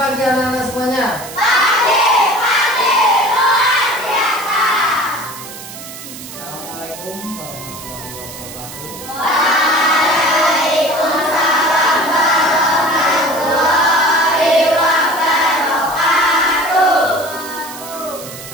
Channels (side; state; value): right; noise; hiss, 13 dB below the sound